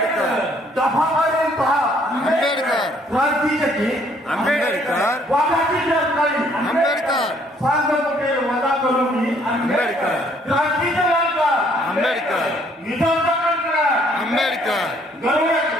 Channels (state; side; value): normal; both; correlation 0.64